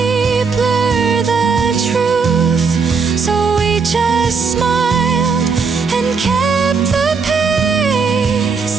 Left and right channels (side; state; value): left; quieter; 5.2 dB